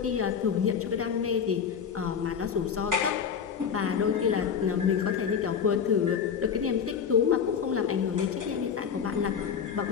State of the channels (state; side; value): quieter; right; 7.1 dB